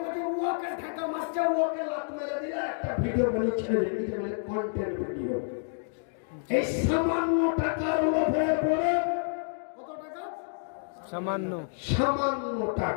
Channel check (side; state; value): right; silent; digital silence